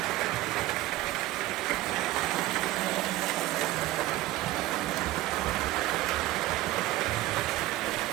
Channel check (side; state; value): left; quieter; 17.0 dB